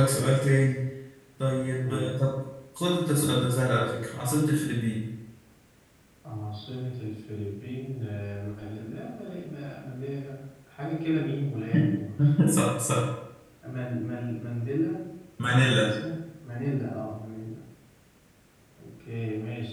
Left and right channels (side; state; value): both; identical; correlation 1.00